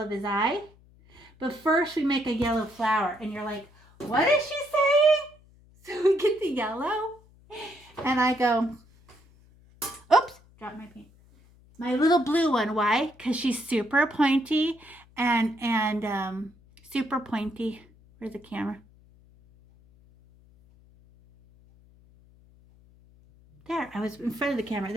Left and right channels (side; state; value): left; noise; hum, 28 dB below the sound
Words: his eye. But first we make a yellow flower, and you're like, what is she saying? So we get the yellow, and I go, oops, dropped my paint. My little blue one, why? Because she's super pointy and super pointy. Where's the camera? There, I was in front of the camera,